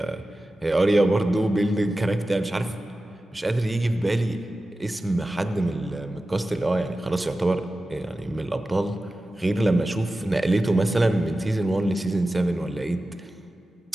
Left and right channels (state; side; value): normal; both; correlation 0.94